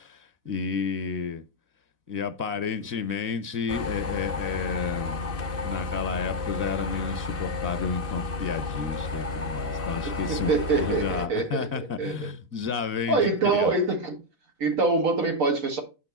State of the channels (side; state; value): left; late; 4.0 ms